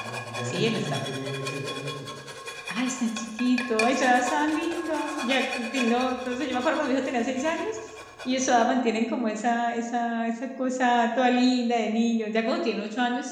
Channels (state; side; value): identical; both; correlation 1.00